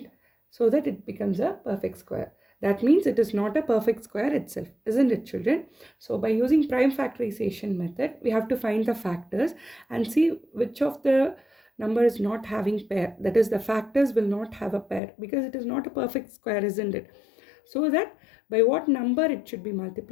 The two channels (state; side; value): drops out; right; at 15.0 s